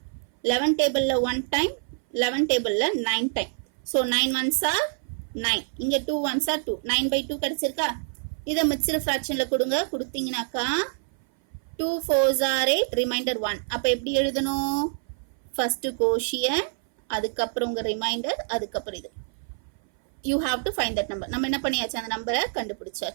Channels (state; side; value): silent; left; 58 dB below the other